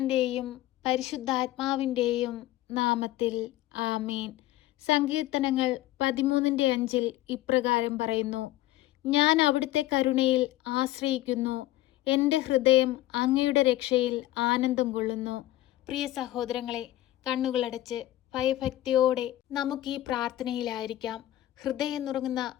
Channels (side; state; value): right; quieter; 15.4 dB